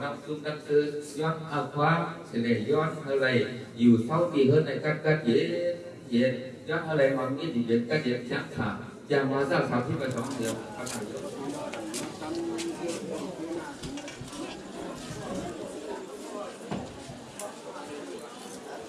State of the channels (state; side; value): identical; both; correlation 1.00